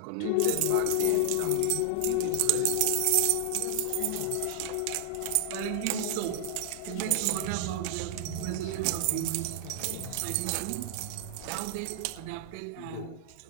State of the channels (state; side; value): different; both; correlation 0.00